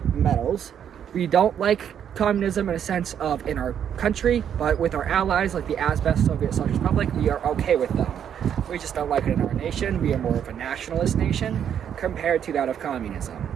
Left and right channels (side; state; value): left; quieter; 8.9 dB